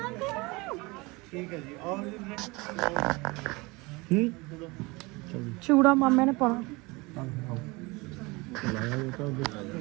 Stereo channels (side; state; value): left; quieter; 24.7 dB